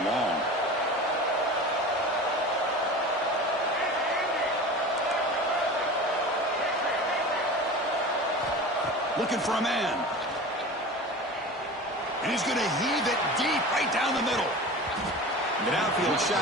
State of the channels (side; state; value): both; normal; correlation 0.34